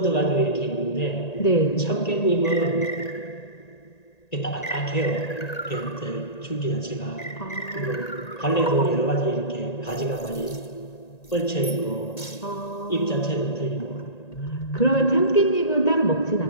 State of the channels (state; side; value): late; right; 1.9 ms